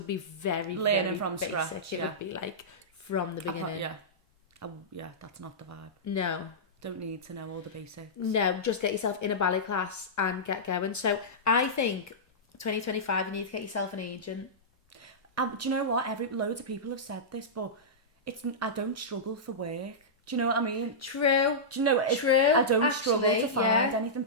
be very, Learning very from basic. scratch, It yeah. would be like from the beginning. Yeah. Yeah, that's not the vibe. No. Don't need to know all the basics. No, just get yourself in a ballet class and get going. So I think 2025, you need to get yourself an agent. Do you know what? Loads of people have said this, but I don't struggle for work. Do you know what I mean? True. Do you know? True, I don't struggle actually, to find yeah. anything.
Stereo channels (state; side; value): normal; both; correlation -0.15